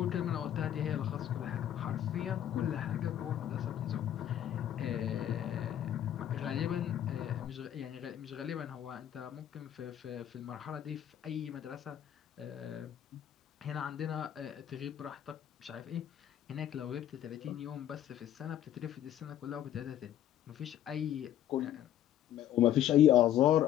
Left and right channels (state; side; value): quieter; right; 11.3 dB